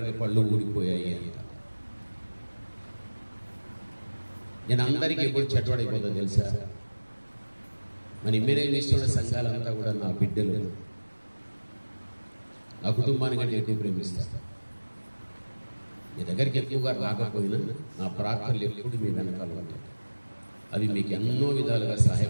పళ్ళు ఊడిపోయాయి అంట. నేను అందరికీ ఎప్పుడు చెడ్డవాడైపోతుందో తెలుసా? మన ఇమ్మేనేం చేస్తున్న సంఘాలంతా కూడా నా బిడ్డలు, నా కుటుంబానికి అంటే ఎక్కువ ప్రేమిస్తారు. మీ దగ్గరికి ఎక్కువగా రాకపోయినా నా ప్రార్థనలు ఎప్పుడు మీ వెనకాల ఉంటాయి. అవి మీకు ఎన్నో విధాలుగా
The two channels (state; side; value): inverted; both; correlation -1.00